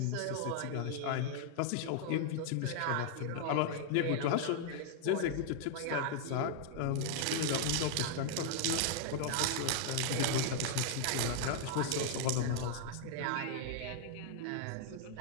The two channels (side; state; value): both; different; correlation 0.00